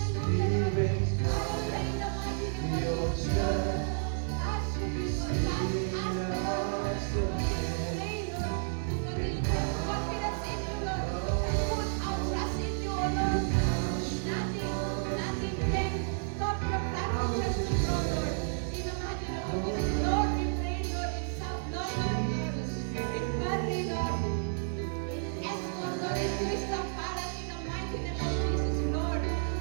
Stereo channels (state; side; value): silent; left; digital silence